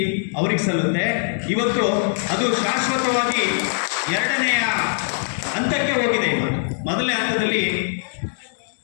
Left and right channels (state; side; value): silent; right; 64 dB below the other